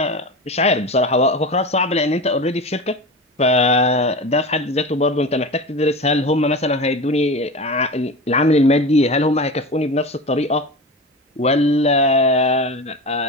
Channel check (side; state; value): both; normal; correlation 0.28